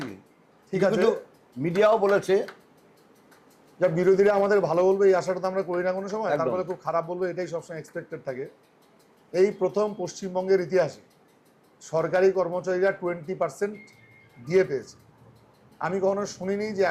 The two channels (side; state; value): both; identical; correlation 1.00